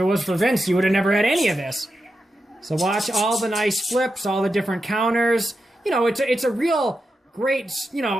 was for Vince, you would have never had any of this. So watch all the nice flips, all the different counters. You know, it's a real... great,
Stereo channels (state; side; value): normal; both; correlation 0.88